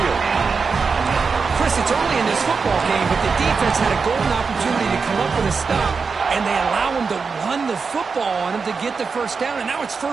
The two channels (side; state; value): left; quieter; 5.1 dB